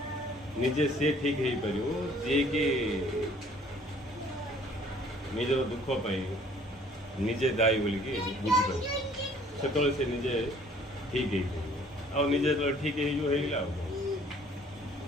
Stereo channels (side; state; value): both; normal; correlation 0.56